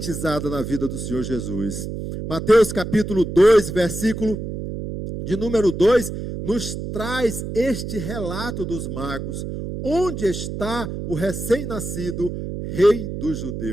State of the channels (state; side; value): noise; right; hum, 6 dB below the sound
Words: na vida do Senhor Jesus. Mateus capítulo 2, versículo de número 2, nos traz este relato dos magos. Onde está o recém-nascido rei dos